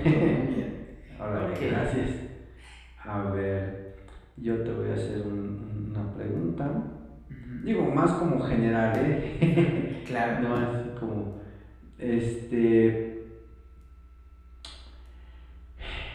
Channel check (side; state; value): both; identical; correlation 1.00